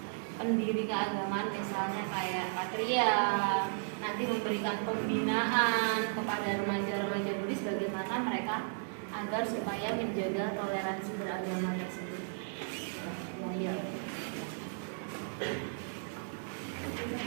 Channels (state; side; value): silent; left; digital silence